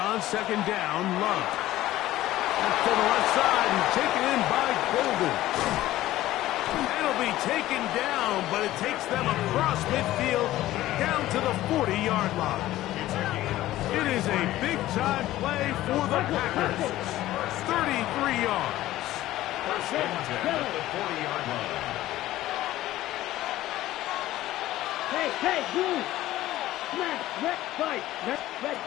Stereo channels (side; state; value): right; quieter; 15.2 dB